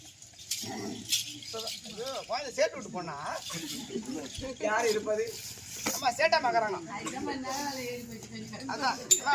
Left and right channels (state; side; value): identical; both; correlation 1.00